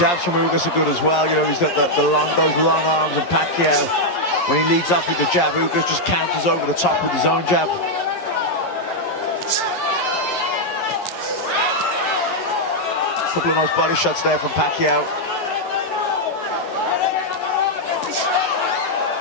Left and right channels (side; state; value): right; late; 11 ms